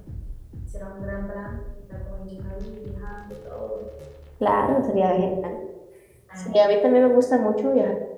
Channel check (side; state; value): both; identical; correlation 1.00